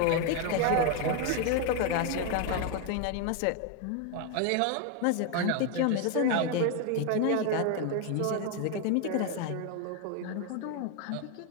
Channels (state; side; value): different; both; correlation 0.01